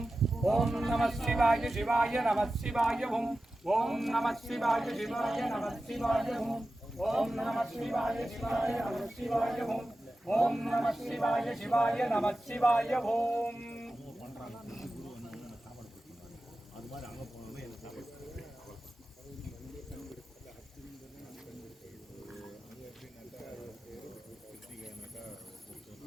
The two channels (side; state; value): both; normal; correlation 0.94